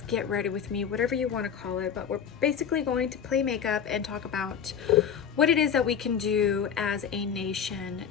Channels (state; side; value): quieter; right; 7.7 dB